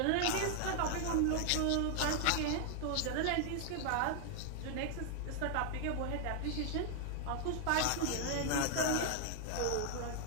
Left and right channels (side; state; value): both; different; correlation 0.00